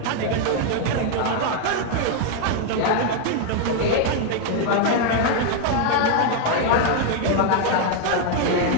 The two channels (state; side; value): different; both; correlation 0.01